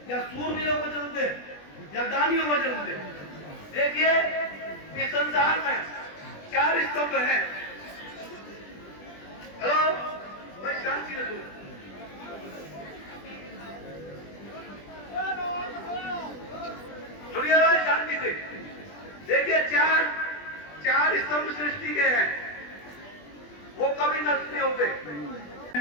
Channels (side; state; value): right; late; 20 ms